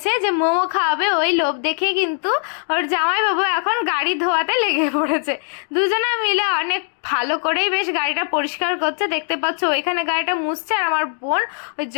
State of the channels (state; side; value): silent; right; 66 dB below the other